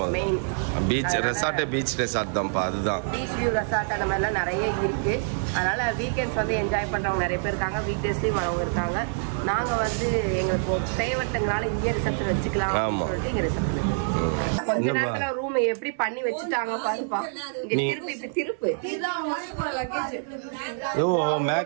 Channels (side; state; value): left; silent; 61 dB below the other